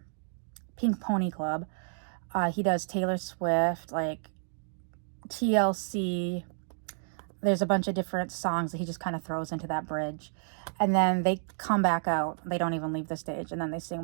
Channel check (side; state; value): left; silent; digital silence